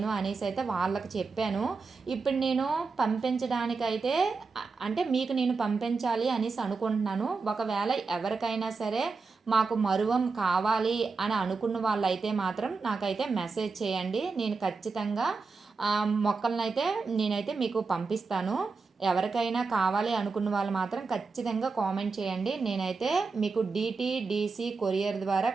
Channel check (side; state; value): left; quieter; 4.4 dB